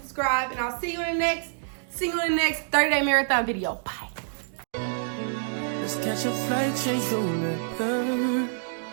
And I'll see you in the next 30-day marathon video. Bye. Let's catch a flight, change the weather,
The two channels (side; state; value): left; silent; digital silence